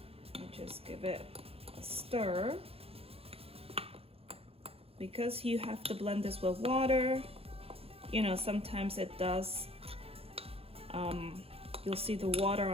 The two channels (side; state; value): left; late; 0.28 ms